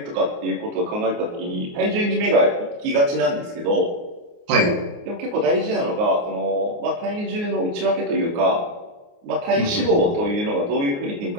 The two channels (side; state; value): left; late; 29 ms